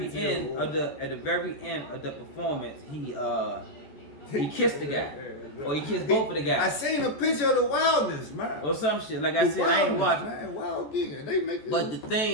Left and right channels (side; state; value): right; late; 14 ms